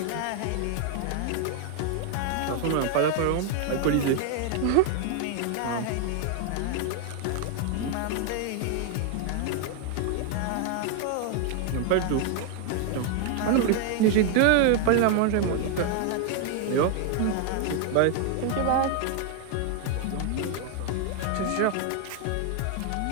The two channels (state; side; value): different; both; correlation 0.00